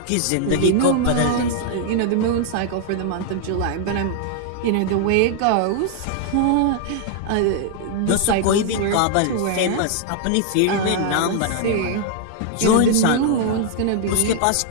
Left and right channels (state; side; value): different; both; correlation 0.00